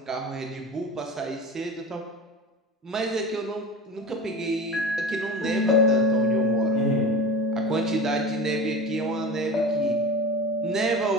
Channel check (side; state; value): both; normal; correlation 0.31